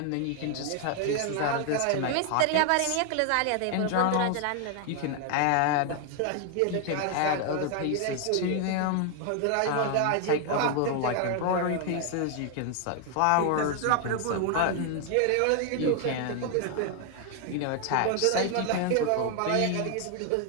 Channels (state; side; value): different; both; correlation 0.00